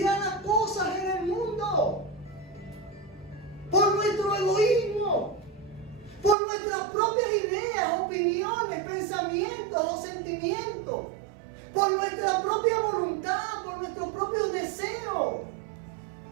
a cosas en el mundo. Por nuestro egoísmo. Por nuestras propias ideas, opiniones, pensamientos o sentimientos. Por nuestra propia voluntad, por nuestros propios deseos.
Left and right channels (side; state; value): left; drops out; at 6.4 s